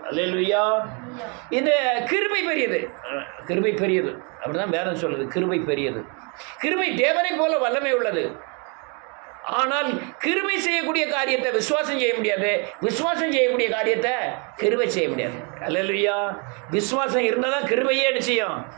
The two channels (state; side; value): quieter; left; 34.3 dB